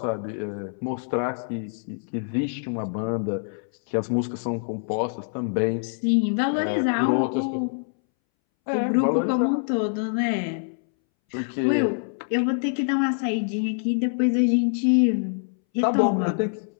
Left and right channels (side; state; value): right; silent; 62 dB below the other